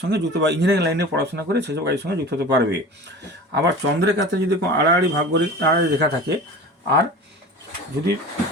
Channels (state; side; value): normal; both; correlation 0.37